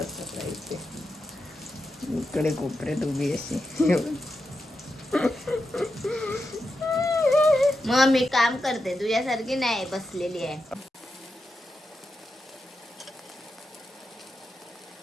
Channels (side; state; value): both; normal; correlation 0.88